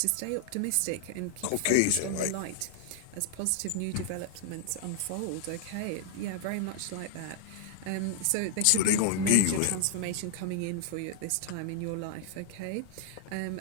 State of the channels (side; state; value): both; different; correlation 0.00